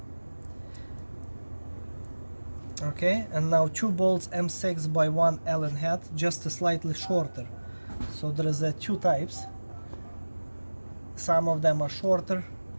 Okay, and now 2 bolts M6 by 1 Allen head, just slightly shorter. So there is 2 types. Some of them are shorter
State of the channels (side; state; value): both; inverted; correlation -1.00